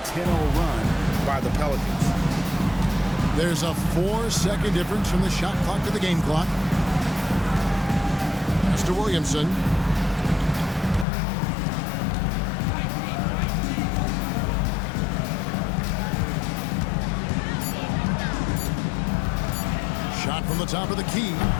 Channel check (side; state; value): right; drops out; at 11.1 s